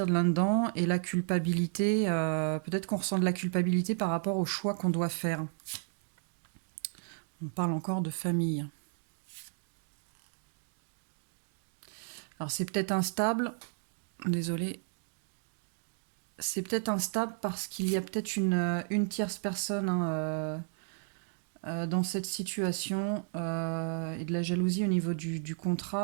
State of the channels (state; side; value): silent; left; 56 dB below the other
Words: de là-dedans, et la culpabilité, peut-être qu'on ressent de la culpabilité par rapport au choix qu'on doit faire. On parle encore de famille. Alors c'est peut-être instable, désolé, c'est peut-être instable parce qu'il y a peut-être une tierce personne, hein, dans cette situation, et de la jalousie au niveau du